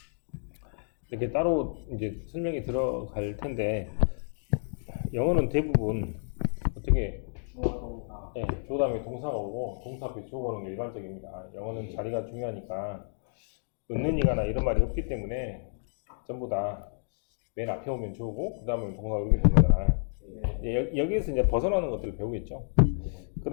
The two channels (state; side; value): silent; right; digital silence